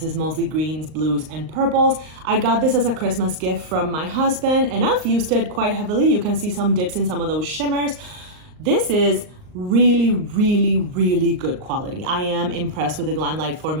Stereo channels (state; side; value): late; left; 38 ms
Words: is mostly greens, blues, and purples. I got this as a Christmas gift from my husband, and I've used it quite heavily. You can see some dips in some of those shimmers. This is really, really, really good quality. I am impressed with the Glamlight